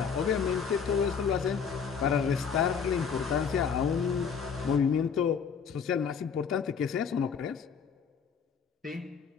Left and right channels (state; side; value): quieter; right; 6.5 dB